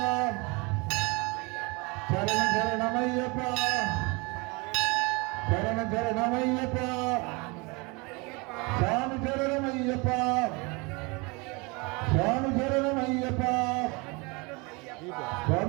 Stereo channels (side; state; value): left; quieter; 27.8 dB